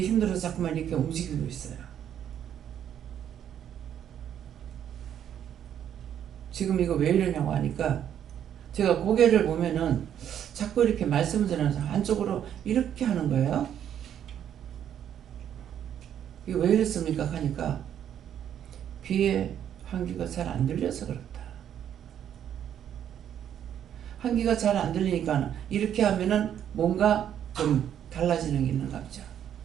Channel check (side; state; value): left; quieter; 9.7 dB